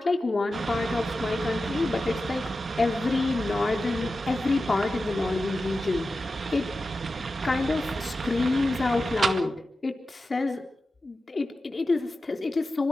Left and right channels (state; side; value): normal; both; correlation 0.92